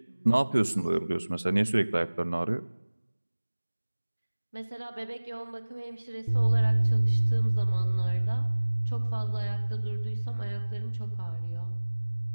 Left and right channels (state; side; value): inverted; both; correlation -1.00